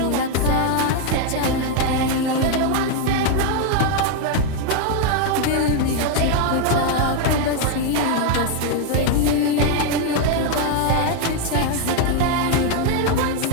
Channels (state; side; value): different; both; correlation 0.01